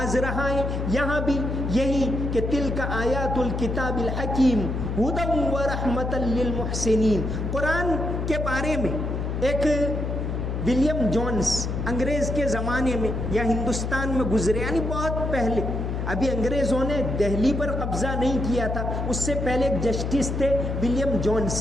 رہا ہے، یہاں بھی یہی کہ تلک آیات الکتاب الحکیم ہدی ورحمۃ للمحسنین۔ قرآن کے بارے میں ایک ولیم جونس انگریز کے زمانے میں یا ہندوستان میں گزرے، یعنی بہت پہلے، ابھی انگریزوں نے دہلی پر قبضہ نہیں کیا تھا، اس سے پہلے ایک جسٹس تھے William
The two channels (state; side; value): noise; left; hum, 2 dB below the sound